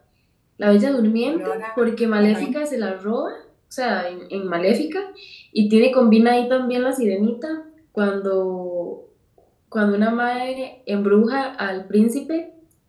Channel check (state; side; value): identical; both; correlation 1.00